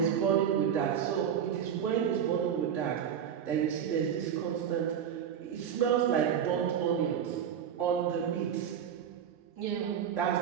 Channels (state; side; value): quieter; left; 8.6 dB